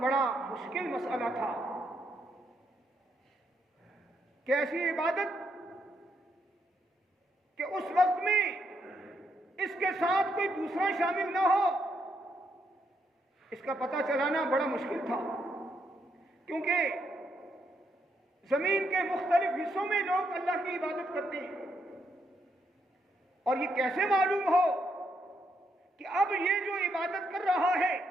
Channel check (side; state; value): both; normal; correlation 0.77